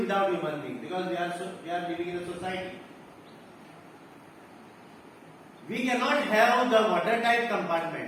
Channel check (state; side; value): identical; both; correlation 1.00